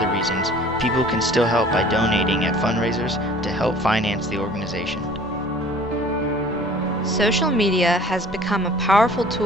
reasons, people can still help by donating at fundraisers to help finance the organization. Social media has become a powerful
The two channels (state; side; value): normal; both; correlation 0.49